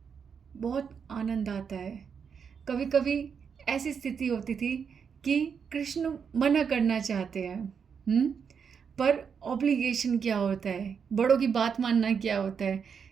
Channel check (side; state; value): left; quieter; 6.6 dB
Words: बहुत आनंद आता है। कभी कभी ऐसी स्थिति होती थी कि कृष्ण मना करना चाहते हैं, पर ऑब्लिगेशन क्या होता है, बड़ों की बात मानना क्या होता है,